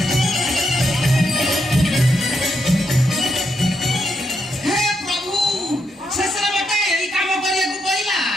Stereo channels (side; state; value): both; normal; correlation 0.81